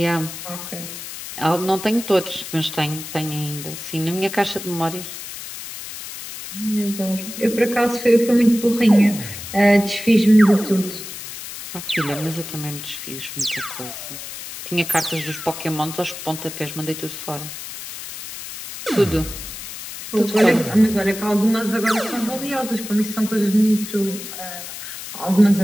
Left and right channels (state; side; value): noise; left; hiss, 10 dB below the sound